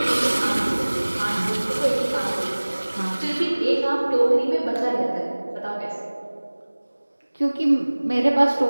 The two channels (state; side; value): inverted; both; correlation -1.00